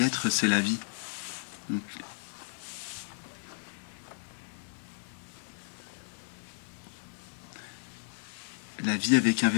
c'est la vie. Donc, la vie avec un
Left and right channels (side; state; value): right; silent; digital silence